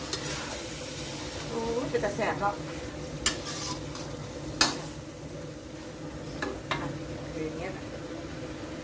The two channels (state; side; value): identical; both; correlation 1.00